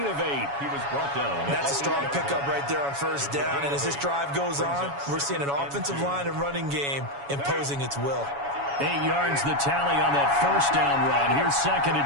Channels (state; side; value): late; left; 7.1 ms